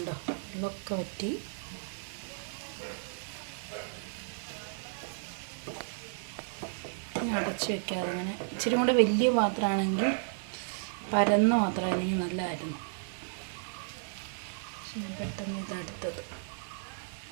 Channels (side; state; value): left; silent; 56 dB below the other